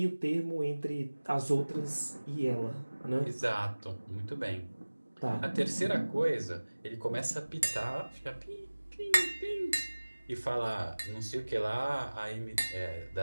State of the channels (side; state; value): both; inverted; correlation -1.00